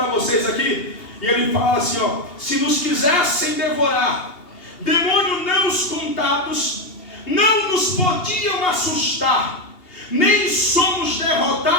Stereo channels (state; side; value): late; right; 2.8 ms